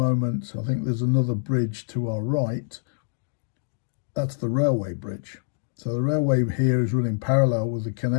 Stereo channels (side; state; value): right; silent; digital silence